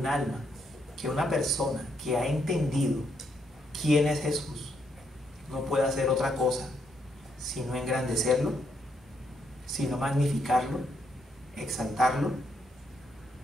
alma, que una persona que ha entendido quién es Jesús, no puede hacer otra cosa sino engrandecerlo, sino magnificarlo, exaltarlo,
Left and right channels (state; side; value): normal; both; correlation 0.76